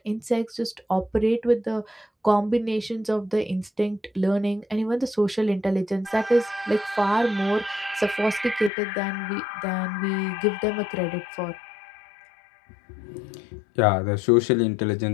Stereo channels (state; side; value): drops out; right; at 8.7 s